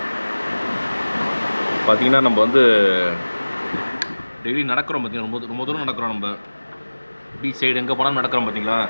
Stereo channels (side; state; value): both; inverted; correlation -1.00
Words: பார்த்தீங்கன்னா நம்ம வந்து டெய்லி நடக்கிறோம் பார்த்தீங்கன்னா. ரொம்ப தூரம் நடக்கிறோம். நம்ம பீச் சைடு எங்கே போனாலும் நடக்கிறோம் பார்த்தீங்களா.